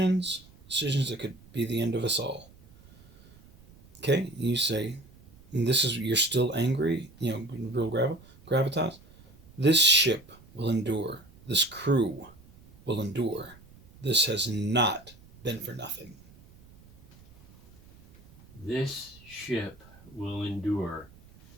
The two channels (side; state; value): right; noise; rumble, 24 dB below the sound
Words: that could be the end of us all. Okay, you say, and this is, you're still angry, real gravitas. This ship will endure. This crew will endure. This has not been for nothing. This ship will endure.